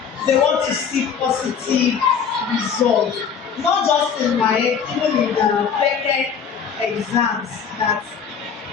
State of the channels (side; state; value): right; quieter; 6.9 dB